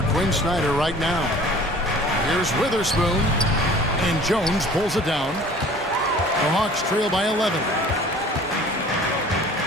Quinn Snyder right now. Here's Witherspoon, and Jones pulls it down. The Hawks trail by 11.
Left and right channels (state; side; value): normal; both; correlation 0.48